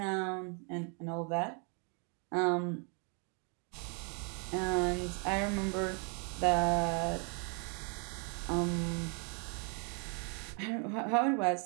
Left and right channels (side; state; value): left; quieter; 38.0 dB